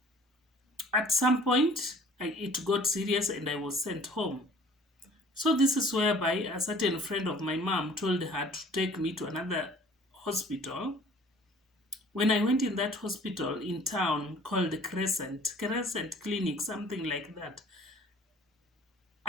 At some point, it got serious and I was sent home. So this is whereby a certain friend of my mom told her to take me to another hospital. When I went in that hospital in town called Crescent Clinic, something like that,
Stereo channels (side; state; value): both; normal; correlation 0.51